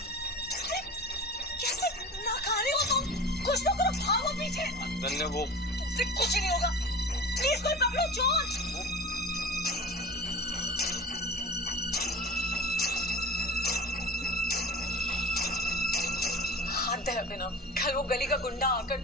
अरे, कैसे नाकारे हो तुम? कुछ तो करो, भागो पीछे। अनन्या वो तुमसे कुछ नहीं होगा, प्लीज कोई पकड़ो चोर। हद है अभिनव, कल वो गली का गुंडा आकर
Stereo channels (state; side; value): normal; both; correlation 0.35